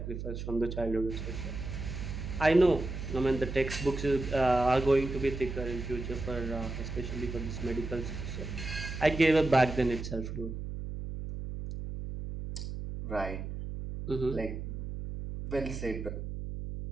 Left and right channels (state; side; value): noise; right; hum, 6 dB below the sound